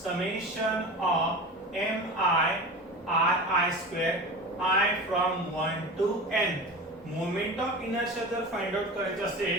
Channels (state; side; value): normal; both; correlation 0.31